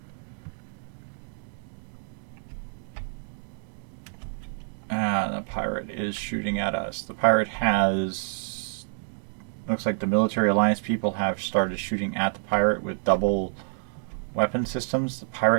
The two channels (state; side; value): silent; left; digital silence